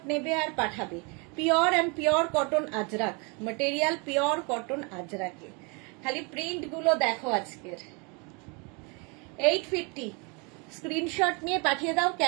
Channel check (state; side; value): quieter; left; 31.6 dB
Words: নেবে আর পাঠাবে। Pure and pure cotton ajrak material, pure cotton আজরাকে। খালি প্রিন্ট গুলো দেখো আজকের। 850, স্ক্রিনশট নিয়ে পাঠিয়ে দাও,